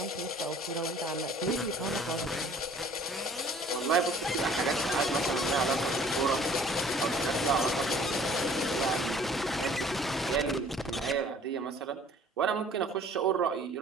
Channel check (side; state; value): both; normal; correlation 0.53